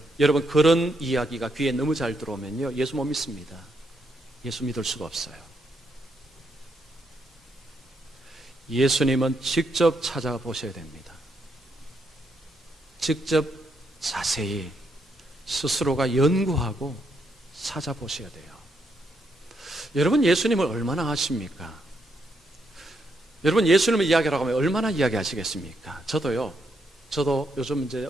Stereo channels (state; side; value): normal; both; correlation 0.78